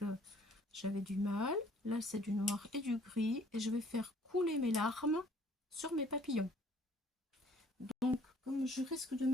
j'avais du mal. Là, c'est du noir et du gris. Et je vais faire couler mes larmes sur mes papillons. Donc, comme je risque de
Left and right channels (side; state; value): both; normal; correlation 0.58